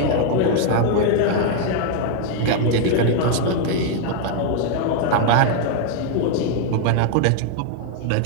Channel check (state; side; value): different; both; correlation 0.00